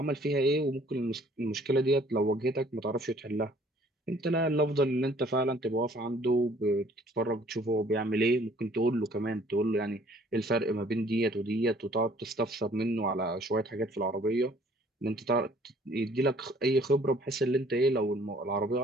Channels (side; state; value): both; normal; correlation 0.57